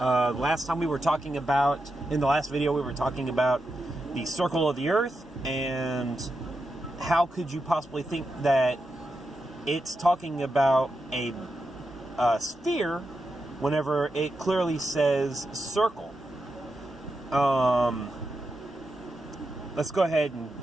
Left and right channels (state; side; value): normal; both; correlation 0.87